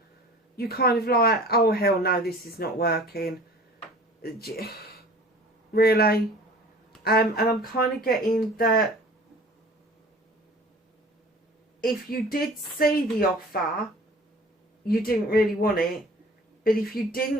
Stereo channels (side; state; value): both; normal; correlation 0.45